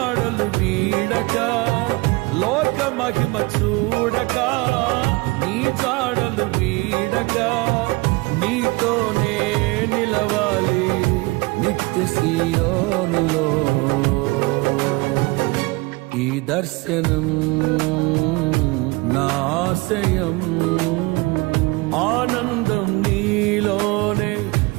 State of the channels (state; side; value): quieter; left; 24.2 dB